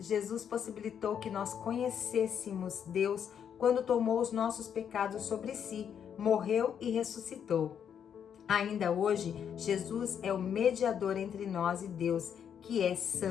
possibilitou que nós conhecêssemos Deus quando tomou os nossos pecados sobre si, morreu e ressuscitou. Ainda hoje, Jesus é o mediador entre nós e Deus, que é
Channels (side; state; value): right; quieter; 8.3 dB